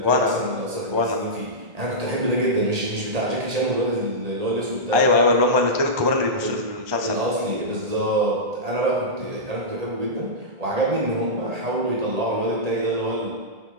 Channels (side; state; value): left; late; 1.8 ms